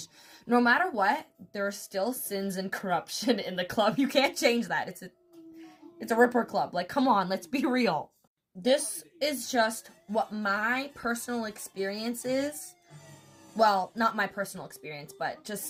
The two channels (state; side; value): identical; both; correlation 1.00